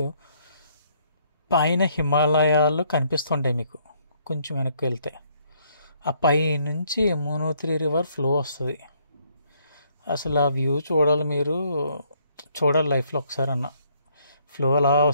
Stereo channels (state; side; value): inverted; both; correlation -0.68